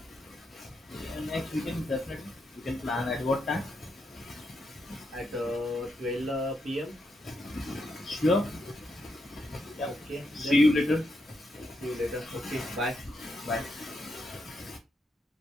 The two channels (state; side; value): normal; both; correlation 0.82